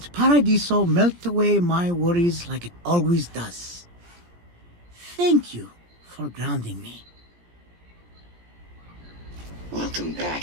Paradiso melt away my worries like it always does. Thank you for grounding me. Welcome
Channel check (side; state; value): left; late; 17 ms